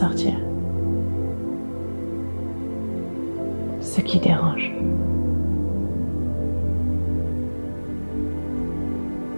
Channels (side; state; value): both; inverted; correlation -1.00